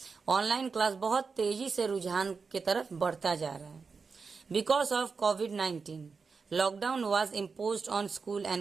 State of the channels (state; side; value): quieter; left; 5.0 dB